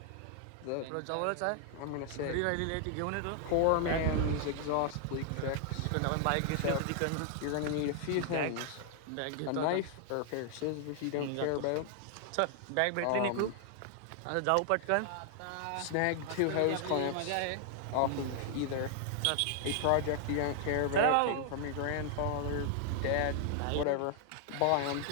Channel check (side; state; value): both; different; correlation 0.00